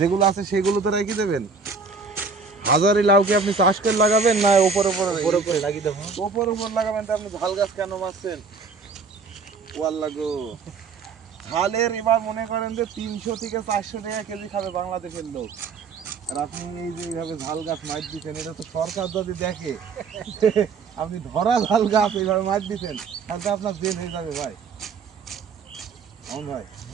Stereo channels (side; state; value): left; quieter; 4.8 dB